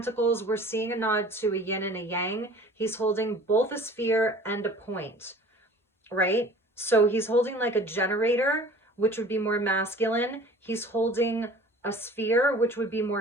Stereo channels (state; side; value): normal; both; correlation 0.46